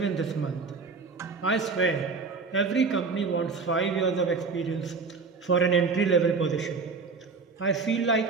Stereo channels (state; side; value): quieter; left; 4.6 dB